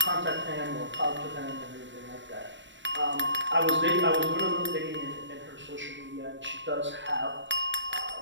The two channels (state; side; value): late; left; 0.53 ms